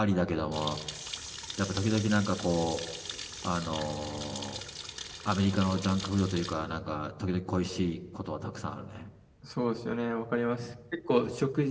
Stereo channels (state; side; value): identical; both; correlation 1.00